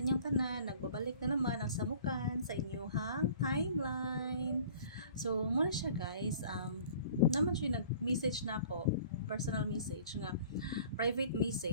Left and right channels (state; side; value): inverted; both; correlation -0.47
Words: inyong tanan, nagbabalik na naman ang samukan sa inyong timeline. So muna siya guys, naman siya nag-message na ako, personal message nga, private